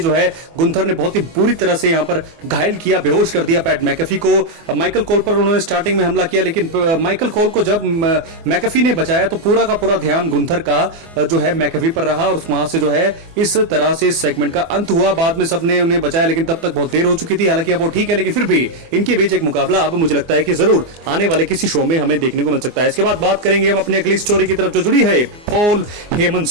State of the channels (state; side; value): late; left; 24 ms